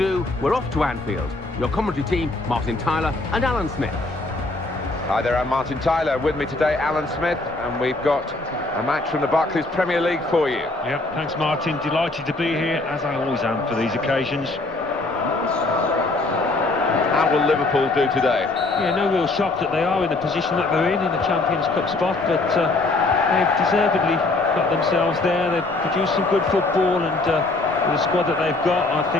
we're off to Anfield. Your commentary team, Martin Tyler and Alan Smith. Hi there, I'm Martin Tyler. With me today, Alan Smith, and we've got a match from the Barclays Premier League for you. Yep, thanks Martin. Delighted to be here, as I always am for these occasions. How will Liverpool do today? Yeah, no real shock that they are in the position that they're in a Champions Cup spot, but they've deservedly got themselves there. They've produced some good football, and with the squad that they've got, I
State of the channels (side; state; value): right; quieter; 3.1 dB